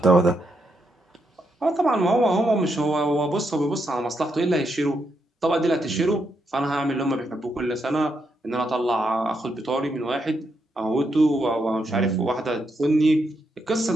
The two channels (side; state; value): both; normal; correlation 0.80